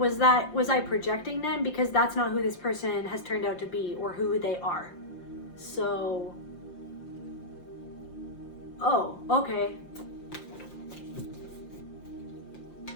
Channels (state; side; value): late; right; 5.7 ms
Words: I projecting them? Because that's not who this person has turned out to be or who they are. So, oh, okay.